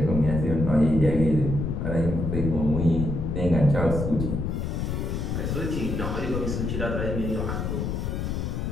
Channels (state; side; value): noise; left; rumble, 2 dB below the sound